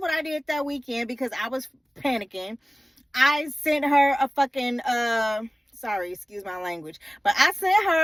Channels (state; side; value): normal; both; correlation 0.97